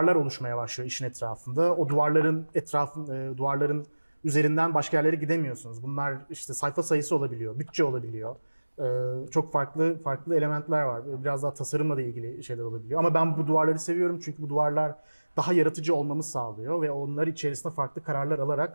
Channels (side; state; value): both; inverted; correlation -1.00